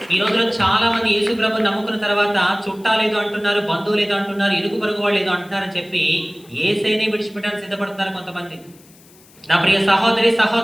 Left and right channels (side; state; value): left; noise; hiss, 26 dB below the sound